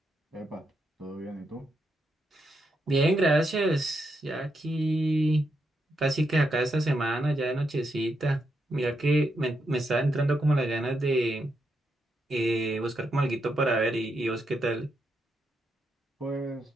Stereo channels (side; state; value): both; normal; correlation 0.82